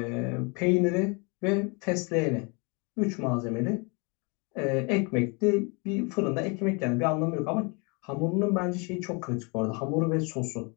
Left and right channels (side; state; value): right; quieter; 31.8 dB